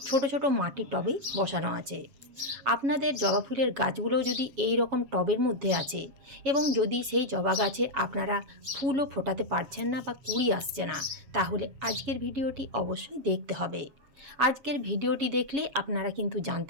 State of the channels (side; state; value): left; late; 7.2 ms